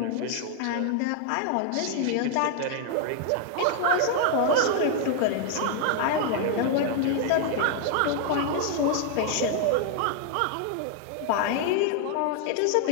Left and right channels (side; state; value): both; different; correlation 0.00